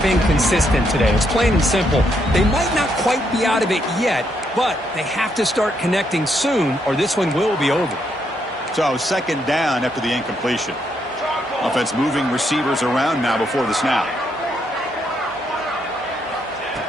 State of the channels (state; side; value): normal; both; correlation 0.76